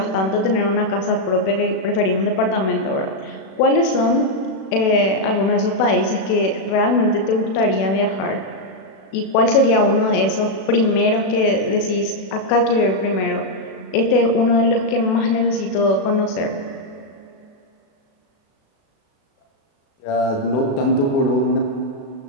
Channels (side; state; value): right; late; 37 ms